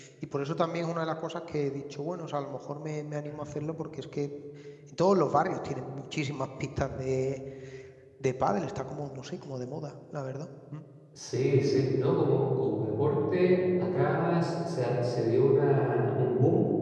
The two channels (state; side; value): identical; both; correlation 1.00